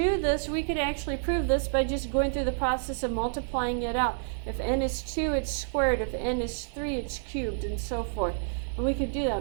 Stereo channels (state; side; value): silent; left; digital silence